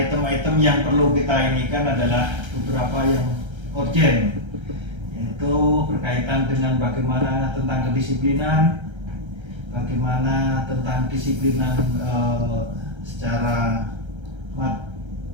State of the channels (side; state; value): left; late; 1.3 ms